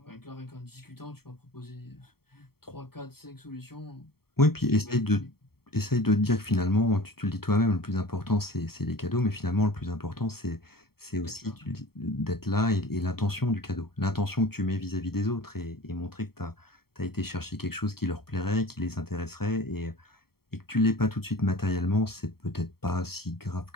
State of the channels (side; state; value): right; late; 0.95 ms